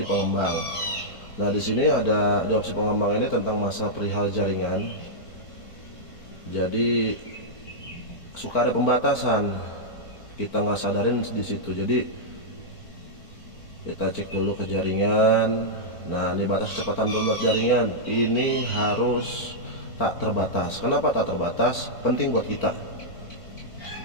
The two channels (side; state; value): right; late; 4.4 ms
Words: pengembang. Nah, di sini ada di opsi pengembang ini tentang masa perihal jaringan. Jadi suka ada pembatasan, kita nggak sadarin di situ. Jadi kita cek dulu ke jaringan. Nah, ini batas kecepatan download jaringan ini harus tak terbatas. Kenapa tak terbatas? Penting buat kita.